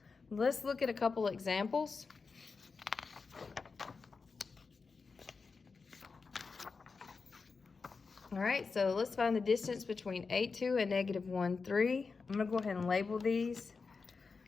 let's look at a couple examples. All right, so let's find the distance between a2 and -1, 3. I'm gonna go ahead and label these.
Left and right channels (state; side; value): quieter; right; 4.7 dB